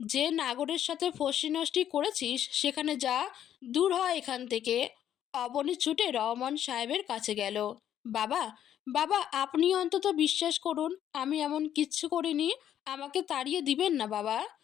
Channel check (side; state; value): right; quieter; 10.5 dB